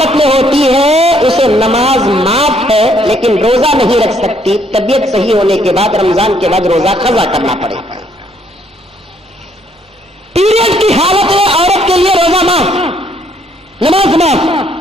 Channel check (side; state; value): both; normal; correlation 0.68